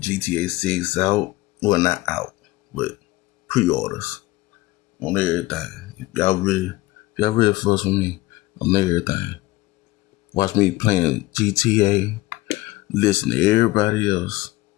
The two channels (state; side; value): quieter; right; 19.4 dB